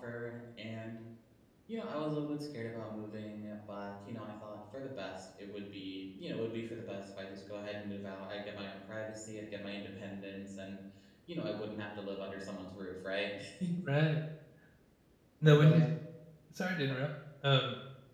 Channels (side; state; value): both; identical; correlation 1.00